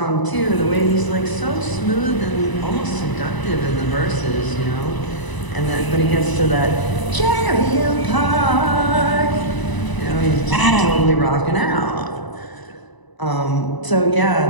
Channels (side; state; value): right; late; 1.0 ms